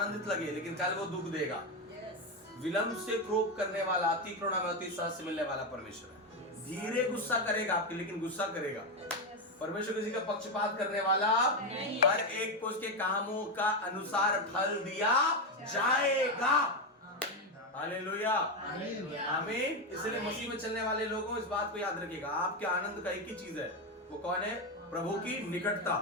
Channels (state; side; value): normal; both; correlation 0.10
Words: लगे लेकिन कल वो दुख देगा। यस। विलंब से क्रोध करने वाला, अति करुणा में अति सहज से मिलने वाला परमेश्वर है। धीरे गुस्सा करेगा आपके, लेकिन गुस्सा करेगा। परमेश्वर किसी का पक्षपात करने वाला नहीं। हर एक को उसके कामों का अनुसार फल दिया जाएगा। हालेलुया, आमीन। इसलिए मसीह में चलने वाले लोगों इस बात को याद रखिएगा, आपके आनंद का एक ही चीज है, वो कौन है? प्रभु की निकटता।